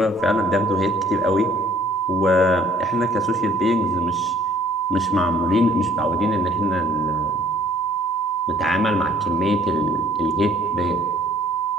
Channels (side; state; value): both; normal; correlation 0.57